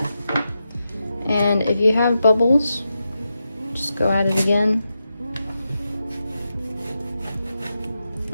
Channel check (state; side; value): inverted; both; correlation -0.88